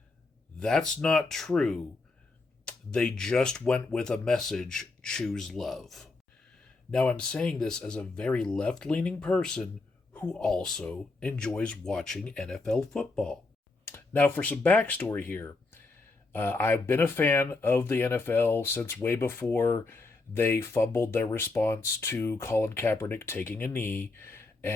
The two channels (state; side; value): quieter; right; 3.5 dB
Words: that's not true. They just went with a message: choose love. Now, I'm saying this as a very left leaning person who also enjoys watching NFL football. Now, for some backstory here, I've been a fan of the NFL since way before they fumbled their response to Colin Kaepernick taking a knee.